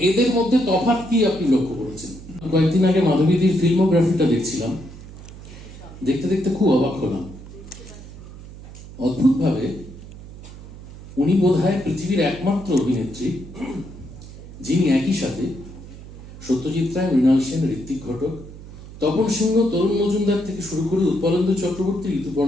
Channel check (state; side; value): noise; right; hum, 16 dB below the sound